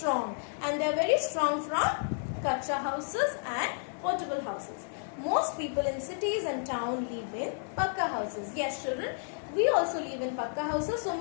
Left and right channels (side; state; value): right; silent; digital silence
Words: and they are very strong from kacha houses and portable houses. Most people in cities and towns live in pakka houses. Yes, children, we also live in pakka houses. So